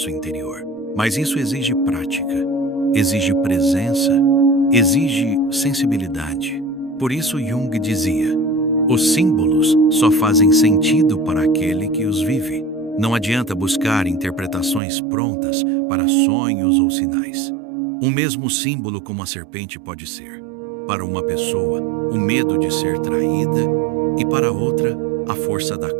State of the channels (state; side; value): drops out; left; at 14.8 s